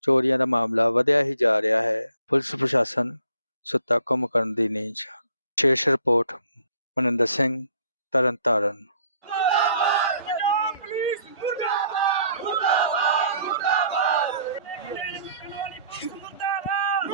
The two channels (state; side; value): inverted; both; correlation -0.61